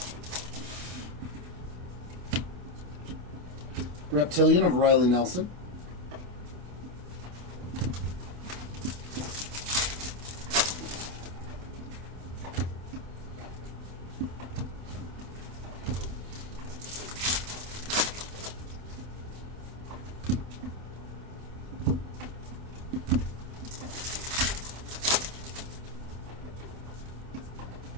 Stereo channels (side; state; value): left; late; 28 ms